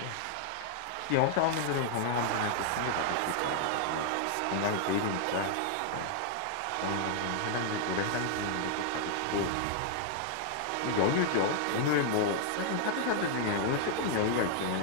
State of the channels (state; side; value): different; both; correlation 0.00